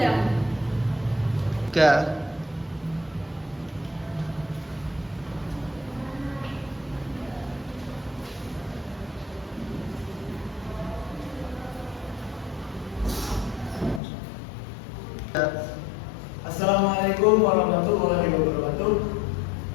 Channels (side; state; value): right; drops out; at 14.0 s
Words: Assalamualaikum warahmatullahi wabarakatuh.